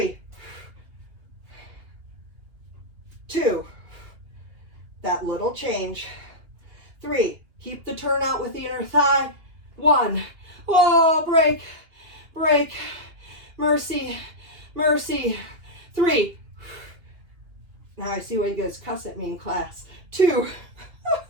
2, that little change. 3, keep the turnout with the inner thigh. 1, oh, break, break, mercy, mercy. 3, now I see why you guys cuss at me in class. 2,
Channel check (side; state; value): left; late; 2.8 ms